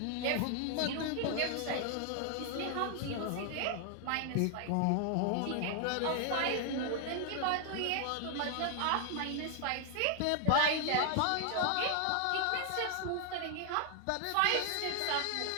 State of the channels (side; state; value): both; different; correlation 0.00